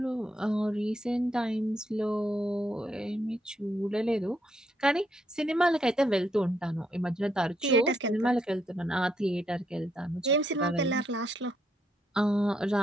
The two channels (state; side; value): normal; both; correlation 0.76